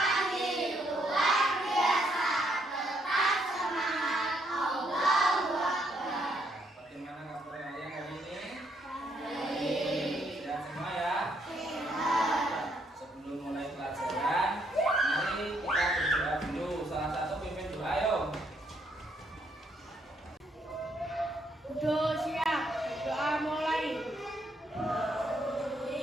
luar biasa. Tetap semangat. Allahu Akbar. Bagaimana kabar kalian hari ini? Baik. Sehat semua ya? Sehat. Sebelum mulai pelajaran, mari kita berdoa dulu. Salah satu pimpin doa, ayo. Udah siap. Doa mulai.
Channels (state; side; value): normal; both; correlation 0.73